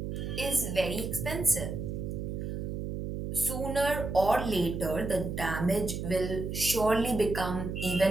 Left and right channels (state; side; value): noise; right; hum, 4 dB below the sound